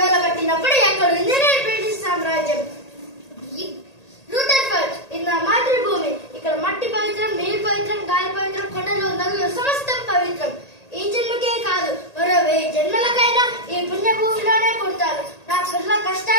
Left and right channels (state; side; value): late; right; 1.8 ms